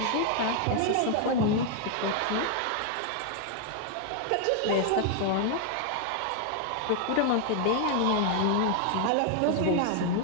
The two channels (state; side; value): different; both; correlation 0.00